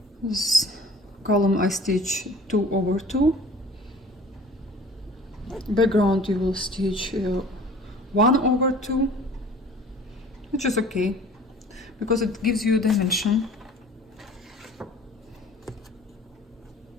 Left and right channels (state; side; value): normal; both; correlation 0.47